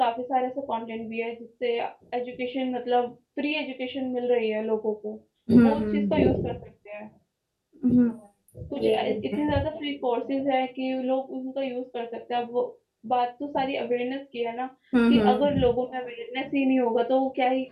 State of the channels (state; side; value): identical; both; correlation 1.00